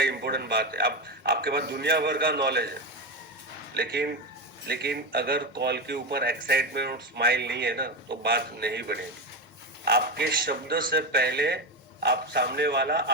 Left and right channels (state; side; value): normal; both; correlation 0.16